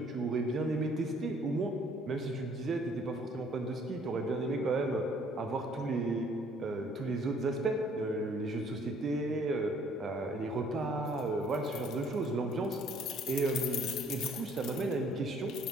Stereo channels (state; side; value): normal; both; correlation 0.60